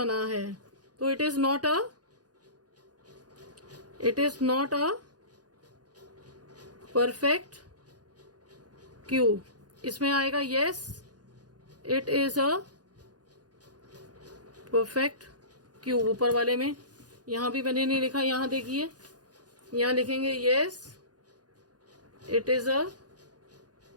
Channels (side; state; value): left; late; 0.69 ms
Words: है। तो it is not a perfect cube. इसमें आएगा yes it is a perfect cube. ऊपर वाले में यहां भी मैंने नहीं लिखा, यहां देखिए, यहां लिखेंगे yes it is a